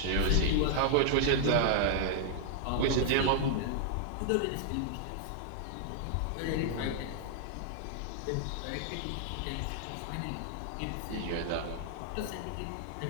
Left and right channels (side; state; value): both; different; correlation -0.01